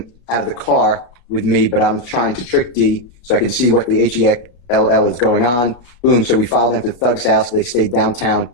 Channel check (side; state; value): right; late; 34 ms